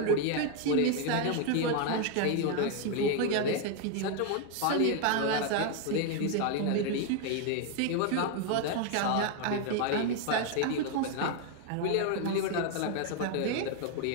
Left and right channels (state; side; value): different; both; correlation 0.01